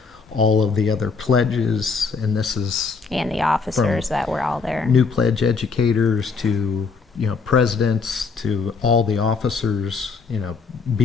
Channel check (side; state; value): right; quieter; 4.8 dB